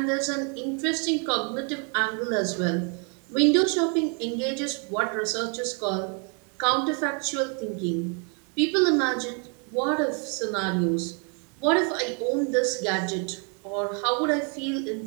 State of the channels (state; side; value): quieter; left; 38.1 dB